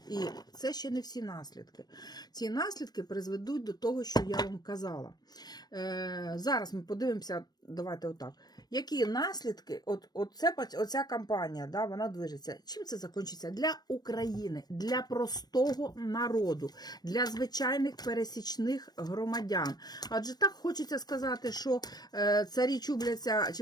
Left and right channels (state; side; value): late; right; 0.19 ms